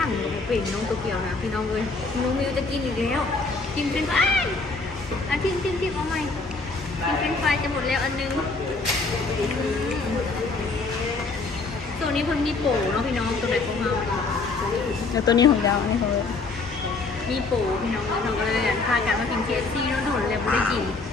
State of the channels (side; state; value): right; quieter; 3.8 dB